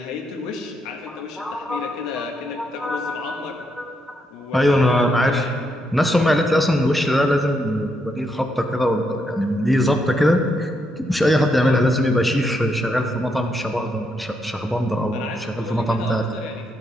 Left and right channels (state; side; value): normal; both; correlation 0.79